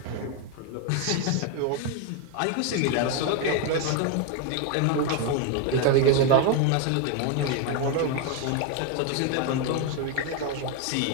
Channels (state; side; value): different; both; correlation 0.01